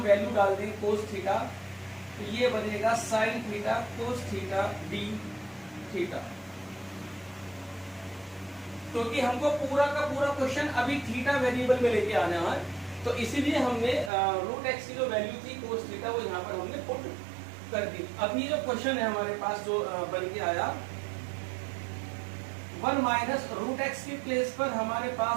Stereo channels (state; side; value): drops out; left; at 14.1 s